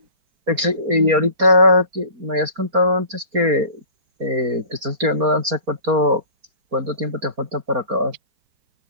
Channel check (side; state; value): left; late; 4.3 ms